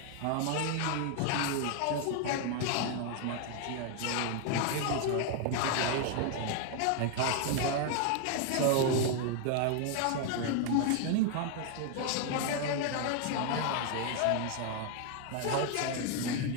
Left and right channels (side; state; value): both; different; correlation 0.00